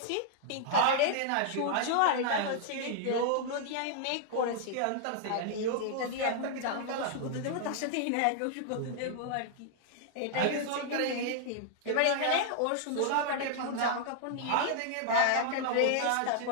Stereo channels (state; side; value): different; both; correlation -0.01